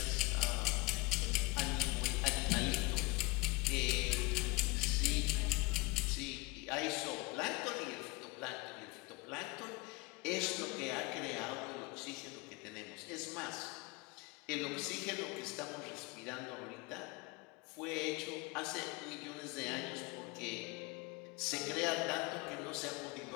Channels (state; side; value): quieter; right; 25.0 dB